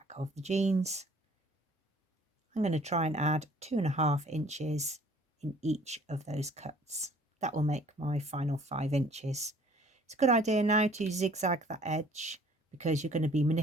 of the jeans. I'm going to try and add 2.5 inches in each of those cuts. That will make my final 5 inches. It's a good idea now to zigzag that edge because you're going to be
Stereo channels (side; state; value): both; normal; correlation 0.55